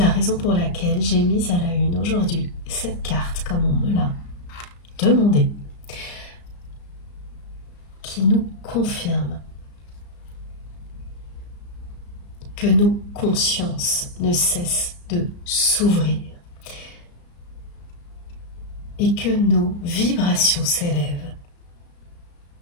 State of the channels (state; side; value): late; right; 34 ms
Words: raison pour laquelle j'ai mis à la une aujourd'hui cette carte, comme on me l'a demandé, qui nous confirme que nos consciences ne cessent de s'ouvrir et que nos vibrations s'élèvent.